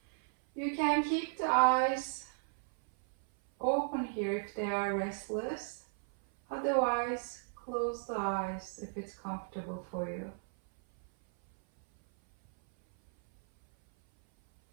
You can keep the eyes open here if they are restless. Otherwise, close the eyes if it's comfortable for you.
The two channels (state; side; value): silent; left; 55 dB below the other